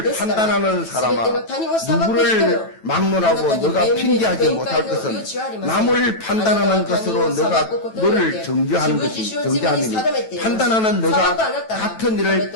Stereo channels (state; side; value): late; right; 9.1 ms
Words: 판단하는 사람아 누구를 막론하고 너가 핑계하지 못할 것은 남을 판단하는 것으로 너가 너를 정죄하는 것이 정죄함이니 판단하는 너가 같은 일을